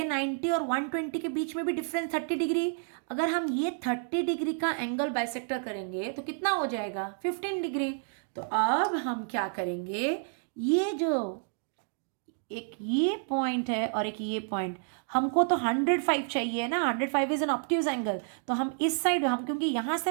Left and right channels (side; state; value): left; silent; 58 dB below the other